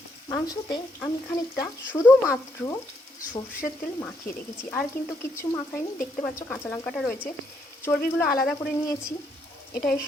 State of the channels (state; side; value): normal; both; correlation 0.74